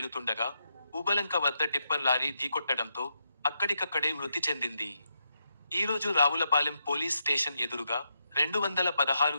ఊబలంక వద్ద టిప్పర్ లారీ ఢీకొట్టడంతో అక్కడికక్కడే మృతి చెందింది. ఈరోజు రావులపాలెం పోలీస్ స్టేషన్ ఎదురుగా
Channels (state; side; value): inverted; both; correlation -0.82